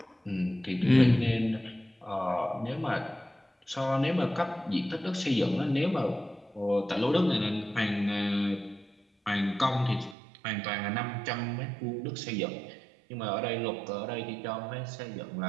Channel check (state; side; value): drops out; left; at 10.2 s